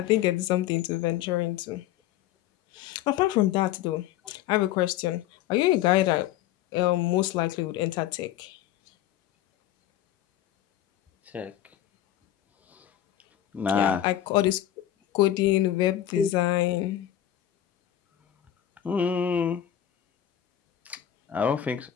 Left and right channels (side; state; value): right; quieter; 11.8 dB